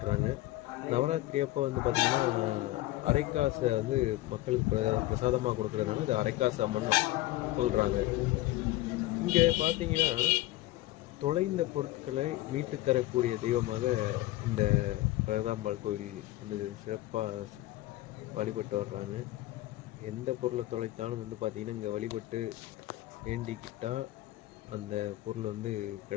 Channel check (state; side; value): quieter; right; 17.3 dB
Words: நவராத்திரி அப்போ வந்து பார்த்திங்கன்னா அரைக்காசை வந்து மக்களுக்கு பிரசாதமாக கொடுக்குறதுனால இது அரைக்காசு அம்மன் சொல்கிறாங்க. இங்கே பார்த்தீங்கன்னா தொலைந்த பொருட்களை மீட்டு தரக்கூடிய தெய்வமாக இந்த பிரகதாம்பாள் கோயில் வந்து சிறப்பாக வழிபட்டு வர்றாங்க. எந்த பொருளை தொலைத்தாலும் வந்து பார்த்திங்கன்னா இங்கே வழிபட்டு வேண்டிக்கிட்டால் அந்த பொருள் வந்து